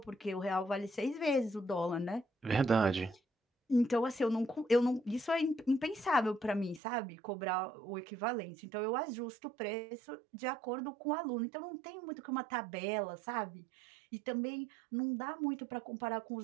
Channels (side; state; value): left; drops out; at 6.8 s